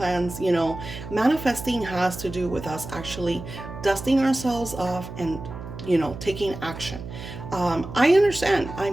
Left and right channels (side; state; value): right; noise; hum, 11 dB below the sound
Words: Manifesting has to do with us actually dusting ourselves off and taking action. I understand,